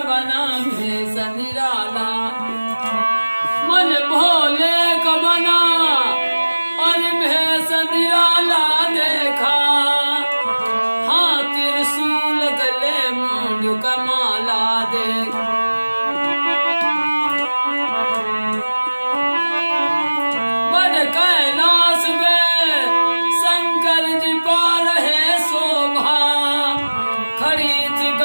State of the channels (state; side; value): inverted; both; correlation -1.00